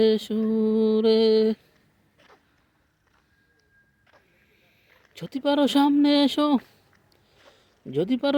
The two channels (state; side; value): identical; both; correlation 1.00